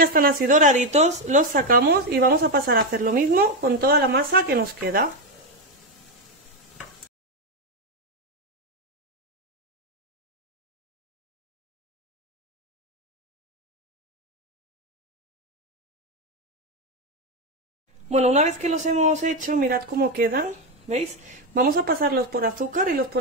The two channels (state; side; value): normal; both; correlation 0.08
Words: están así doraditos, los sacamos y vamos a pasar a hacer lo mismo con toda la masa que nos queda. Bueno, una vez que los hemos hecho, mirad cómo quedan, ¿veis? Vamos a pasarlos por azúcar y los